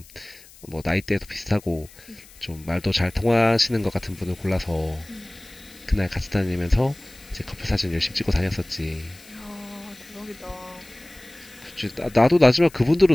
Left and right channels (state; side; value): noise; left; hiss, 23 dB below the sound